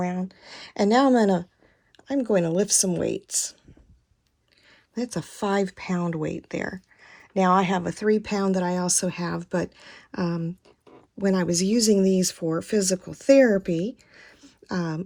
And now I'm going to lift some weights. That's a 5-pound weight there. Now I have a 3-pound that I also have, but when I was using these for physical therapy,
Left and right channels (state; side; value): identical; both; correlation 1.00